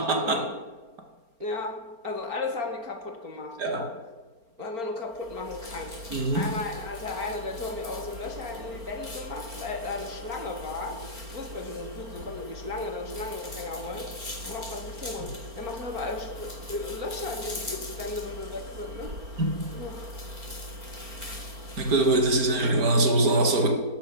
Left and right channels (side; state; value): left; late; 4.4 ms